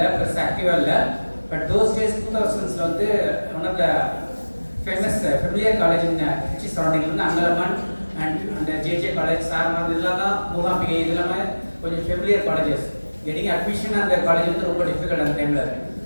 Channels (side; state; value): both; inverted; correlation -1.00